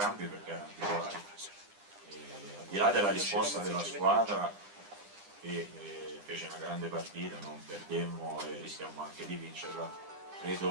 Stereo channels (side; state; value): left; late; 9.9 ms